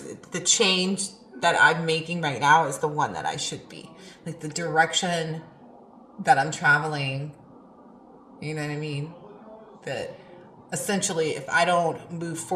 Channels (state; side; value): identical; both; correlation 1.00